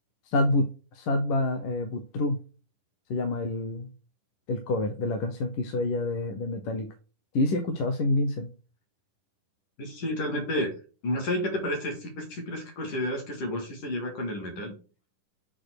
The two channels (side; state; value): right; late; 10 ms